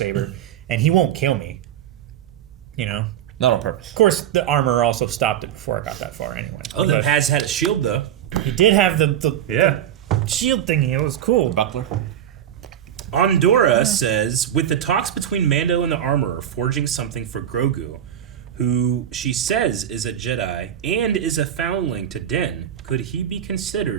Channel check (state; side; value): quieter; left; 10.4 dB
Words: and he won't kill me. You know? Not on purpose. Of course, the armor also stopped it before I got that far anyway. Oh, then Paz had a shield, though. He did have the Yeah. shield thingy. It was cool. Buckler. Ondora says, with the talks between Mando and the Armorer forging something for Grogu, who she says is a Jedi and is a foundling to Din, could he be